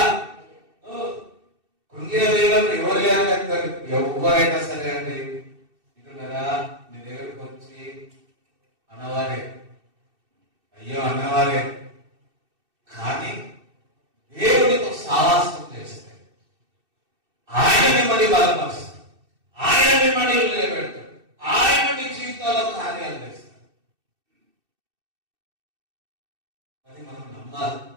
కృంగిన వేళలో ఎవరు లేరు, ఎవరైనా సరే అండి ఇంటున్నారా, నీ దగ్గరకు వచ్చి అన్నవారే, అయ్యో అన్నవారే, కానీ దేవుడితో సావాసం చేస్తే ఆయన మిమ్మల్ని బలపరుస్తాడు, ఆయన మిమ్మల్ని నిలబెడతాడు, ఆయన మీ జీవితంలో కార్యాలు చేస్తాడు. అది మనం నమ్మాలి,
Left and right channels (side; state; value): left; late; 2.6 ms